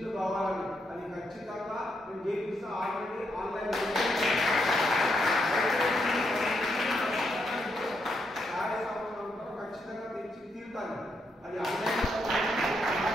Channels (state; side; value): normal; both; correlation 0.79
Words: కావాలని. అది ఖచ్చితంగా నేను చేపిస్తా. ఆల్రెడీ ఆన్లైన్ ఖచ్చితంగా తెచ్చి తీరుతాను. అది ఆన్లైన్